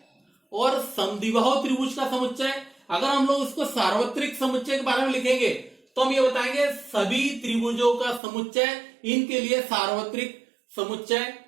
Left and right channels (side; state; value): left; drops out; at 8.2 s